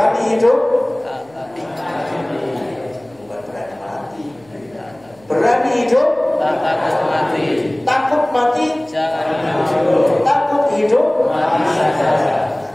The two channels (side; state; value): left; noise; hum, 29 dB below the sound